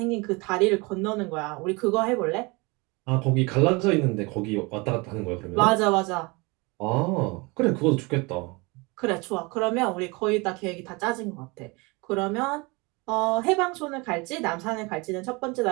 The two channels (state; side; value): quieter; left; 26.7 dB